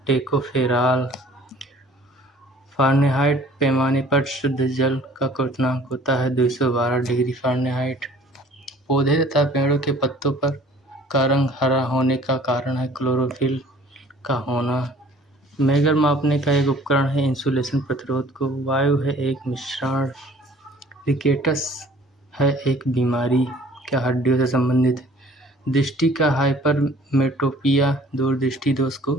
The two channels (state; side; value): normal; both; correlation 0.52